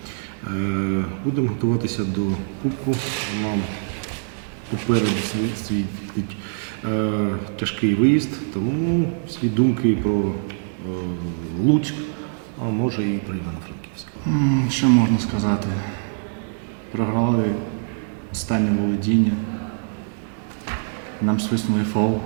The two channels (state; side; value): silent; left; 63 dB below the other